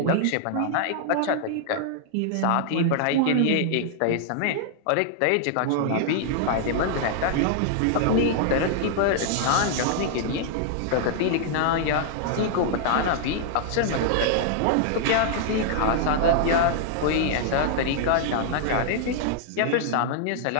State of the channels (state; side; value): different; both; correlation -0.01